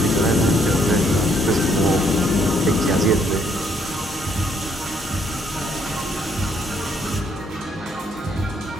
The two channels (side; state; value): both; normal; correlation 0.69